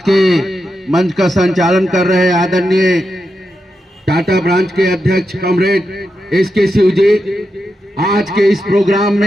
मंच का संचालन कर रहे आदरणीय टाटा ब्रांच के अध्यक्ष कॉमरेड एसके शिव जी, आज के इस प्रोग्राम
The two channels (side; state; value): both; normal; correlation 0.87